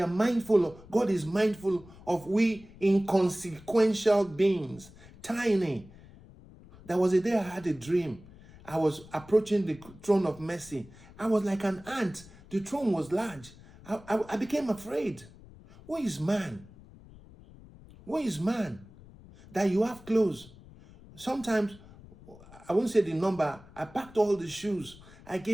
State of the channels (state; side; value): noise; left; rumble, 21 dB below the sound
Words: mindful of? God is mindful of we inconsequential beings, tiny. There was a day I had a dream. I was approaching the throne of mercy. I was like an ant. The throne was large. I became afraid. What is man? What is man? That you have clothes. Sometimes, I won't say the number, I packed all the shoes. I